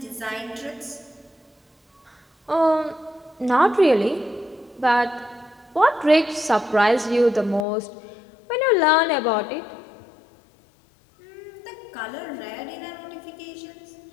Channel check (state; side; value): drops out; right; at 7.7 s